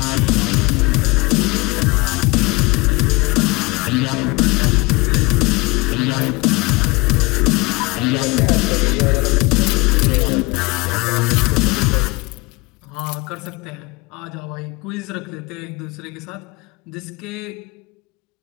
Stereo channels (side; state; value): right; quieter; 24.6 dB